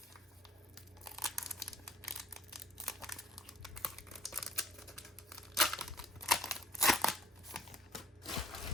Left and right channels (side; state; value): both; normal; correlation 0.58